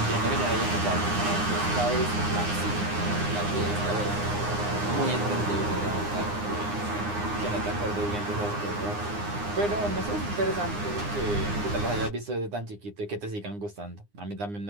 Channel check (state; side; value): late; left; 9.8 ms